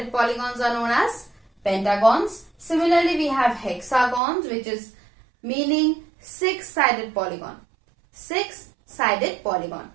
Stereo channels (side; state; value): left; drops out; at 4.2 s